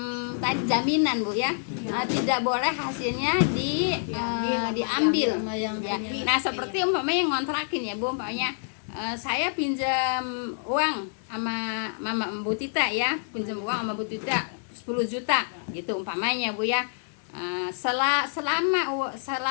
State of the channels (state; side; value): silent; right; digital silence